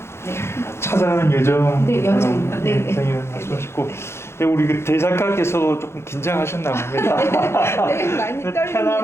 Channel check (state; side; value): late; right; 0.12 ms